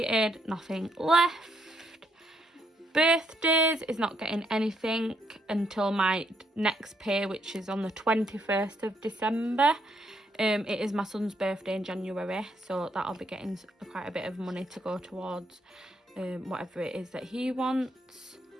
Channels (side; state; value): both; normal; correlation 0.74